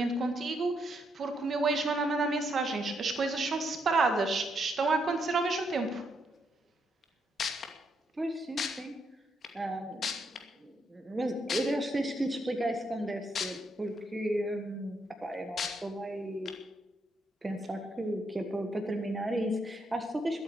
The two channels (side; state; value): both; normal; correlation 0.77